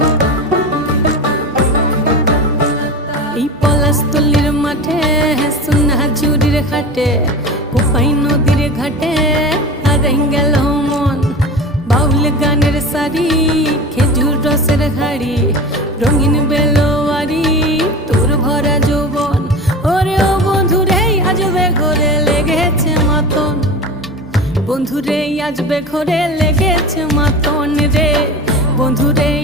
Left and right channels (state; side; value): normal; both; correlation 0.31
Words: এই পলাশতলির মাঠে সোনা ঝুড়ির হাটে কোপাই নদীর ঘাটে হারাই গেল মন বাউল গানের সারি খেজুর রসের হাড়ি রঙিন বেলোয়ারি তোর ভরা যৌবন ওরে ও বন্ধুরে আজবে ঘরে লেগেছে মাতন বন্ধুরে আজবে ঘরে লেগেছে মাতন রে বন্ধুরে